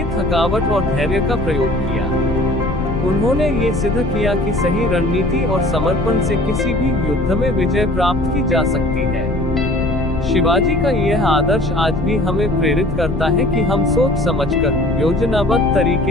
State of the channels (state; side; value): noise; left; rumble, 5 dB below the sound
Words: थकावट और धैर्य का प्रयोग किया। उन्होंने ये सिद्ध किया कि सही रणनीति और समर्पण से किसी भी युद्ध में विजय प्राप्त की जा सकती है। शिवाजी का यह आदर्श आज भी हमें प्रेरित करता है कि हम सोच समझकर योजनाबद्ध